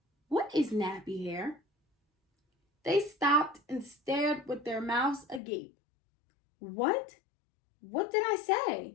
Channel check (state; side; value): drops out; right; at 5.4 s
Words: "What is nappy hair?" They stopped and stared with their mouths agape. What? What did I